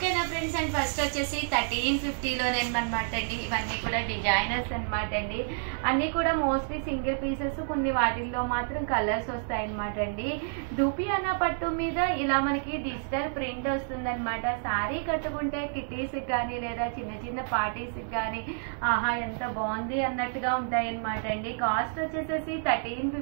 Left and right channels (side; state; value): left; silent; digital silence